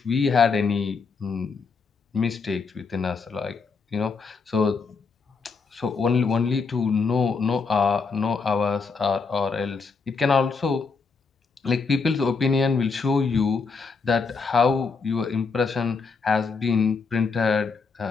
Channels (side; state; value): right; quieter; 4.8 dB